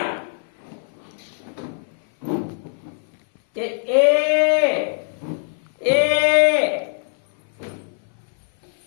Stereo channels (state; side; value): silent; right; 57 dB below the other